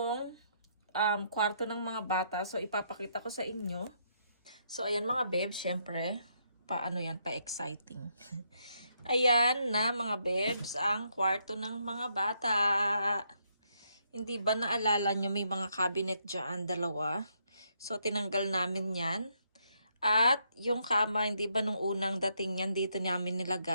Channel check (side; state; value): both; inverted; correlation -0.75